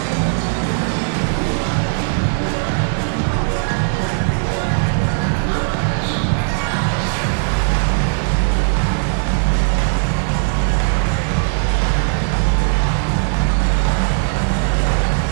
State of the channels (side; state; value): left; silent; 67 dB below the other